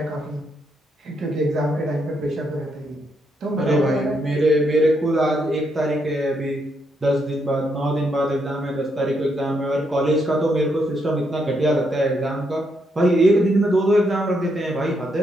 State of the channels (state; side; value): normal; both; correlation 0.77